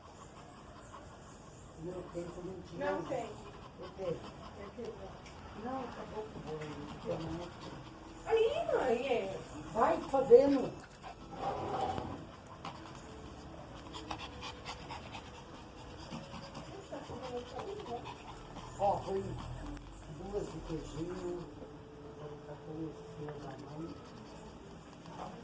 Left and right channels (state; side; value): identical; both; correlation 1.00